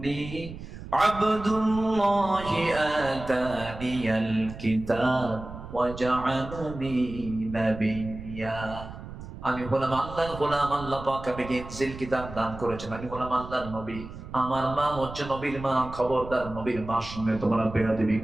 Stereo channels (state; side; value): noise; right; rumble, 12 dB below the sound